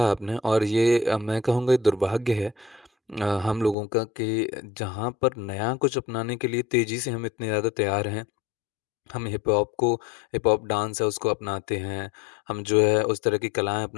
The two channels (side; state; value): right; drops out; at 3.8 s